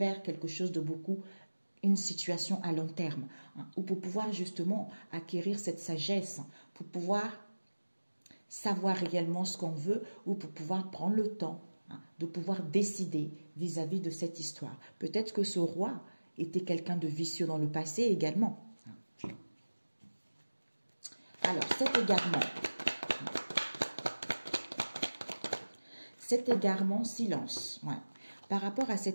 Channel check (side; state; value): both; inverted; correlation -1.00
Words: quelque chose de beaucoup, une situation à long terme, hein, ou pour pouvoir justement acquérir cette sagesse, pour pouvoir savoir réellement ce qu'on veut, ou pour pouvoir prendre le temps, hein, de pouvoir décider vis-à-vis de cette histoire. Peut-être que ce roi était quelqu'un de vicieux dans le passé également. Alors, cet égarement, silence. Ouais. Par rapport à